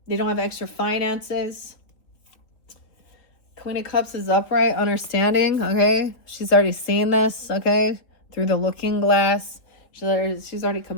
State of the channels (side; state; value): right; late; 3.6 ms